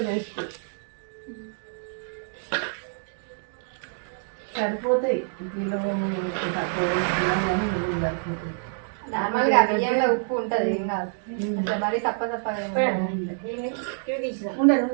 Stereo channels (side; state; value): left; silent; digital silence